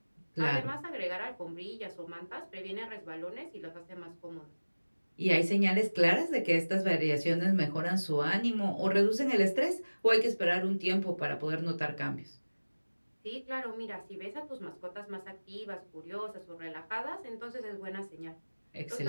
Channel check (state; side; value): inverted; both; correlation -1.00